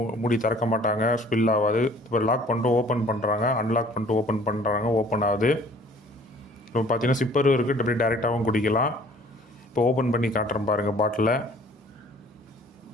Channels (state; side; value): normal; both; correlation 0.53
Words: மூடி திறக்க மாட்டாங்க, ஸ்பில் ஆகாது. இப்போ லாக் பண்ணிட்டு ஓப்பன் பண்ணுறாங்க, அன்லாக் பண்ணிட்டு ஓப்பன் பண்ணுறாங்க, ஓப்பன் ஆகுது. இப்போ பார்த்திங்கன்னா சிப்பரும் இருக்குது, அப்படியே டேரெக்டாகவும் குடிக்கலாம். இப்போ ஓப்பன் பண்ணி காட்டுறேன் பாருங்கள் பாட்டிலை.